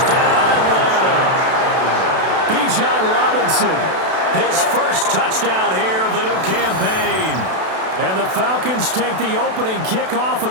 Atlanta. Bijan Robinson, his first touchdown here of the new campaign. And the Falcons take the opening kickoff of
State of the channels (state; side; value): late; left; 32 ms